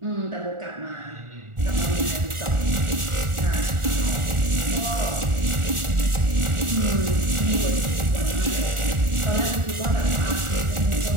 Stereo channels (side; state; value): left; late; 1.4 ms